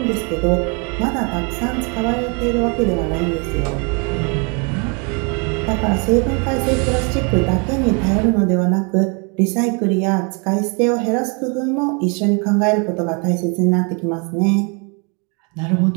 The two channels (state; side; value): quieter; left; 34.1 dB